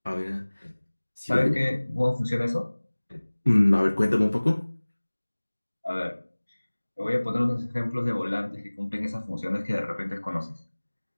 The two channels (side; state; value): both; inverted; correlation -1.00